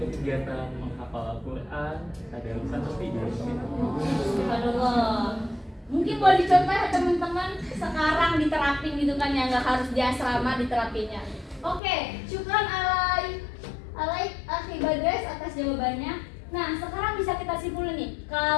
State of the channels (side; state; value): right; drops out; at 11.8 s